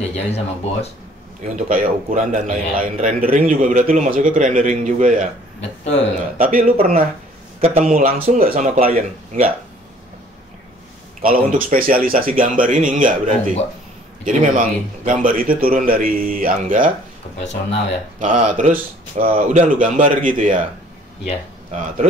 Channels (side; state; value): both; normal; correlation 0.56